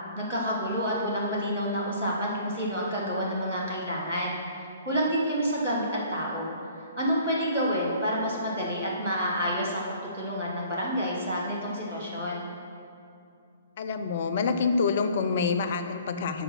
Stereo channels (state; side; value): inverted; both; correlation -0.53